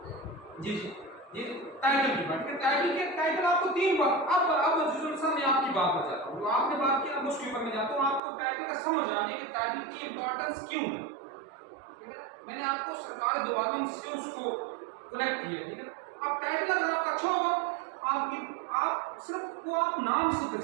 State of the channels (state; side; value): drops out; left; at 8.2 s